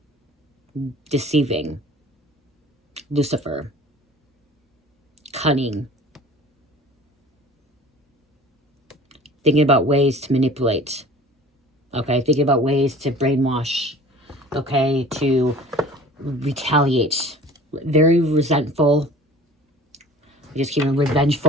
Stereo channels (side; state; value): both; normal; correlation 0.45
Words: deceiving, Lucifer, cunning, thinking about ways to manipulate, okay, thinking about ways to brainwash, okay, to retaliate, very resentful, just keeping